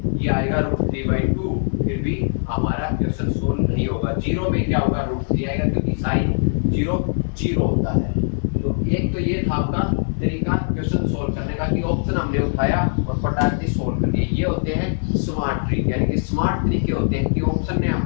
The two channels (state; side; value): silent; right; 65 dB below the other